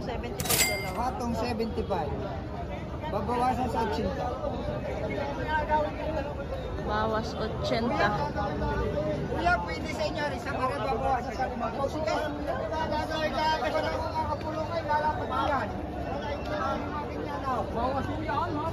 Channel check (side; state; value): both; identical; correlation 1.00